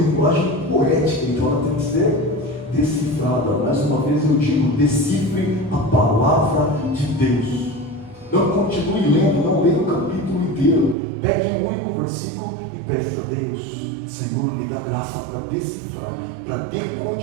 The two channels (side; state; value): left; drops out; at 11.0 s